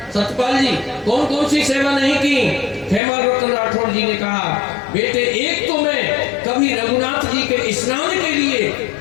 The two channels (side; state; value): right; drops out; at 3.0 s